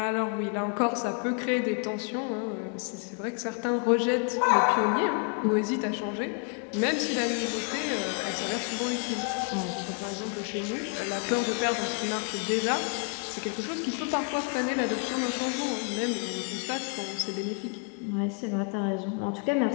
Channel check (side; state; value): right; quieter; 37.9 dB